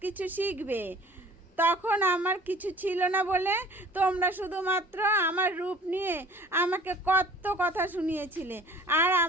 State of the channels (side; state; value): both; normal; correlation 0.48